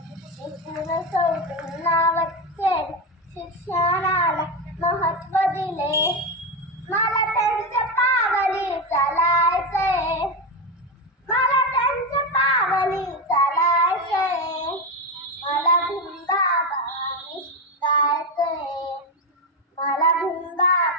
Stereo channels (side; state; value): both; normal; correlation 0.12